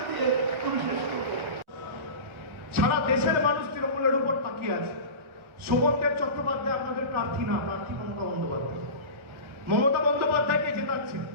দিয়ে আমি শেষ করব। সারা দেশের মানুষ তৃণমূলের উপর তাকিয়ে আছে। শোভনদেব চট্টোপাধ্যায় আপনাদের প্রার্থী না, প্রার্থী মমতা বন্দ্যোপাধ্যায়। মমতা বন্দ্যোপাধ্যায়কে জেতাচ্ছে,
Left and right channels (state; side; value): late; left; 1.4 ms